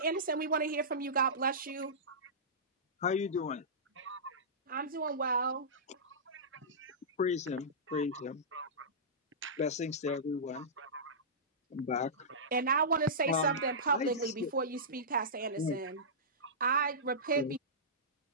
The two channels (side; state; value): both; normal; correlation -0.19